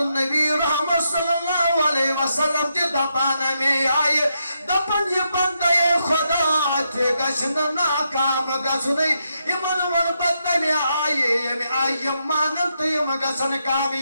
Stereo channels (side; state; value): both; inverted; correlation -0.81